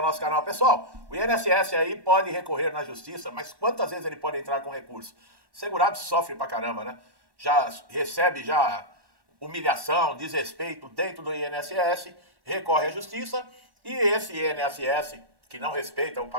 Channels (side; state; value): left; late; 1.1 ms